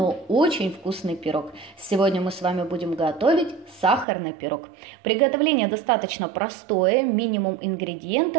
очень вкусный пирог. Сегодня мы с вами будем готовить сахарный пирог. Приготовление достаточно простое, минимум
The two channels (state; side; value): drops out; left; at 4.0 s